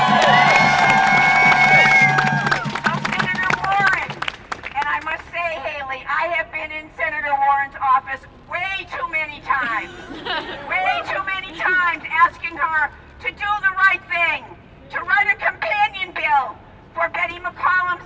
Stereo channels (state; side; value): identical; both; correlation 1.00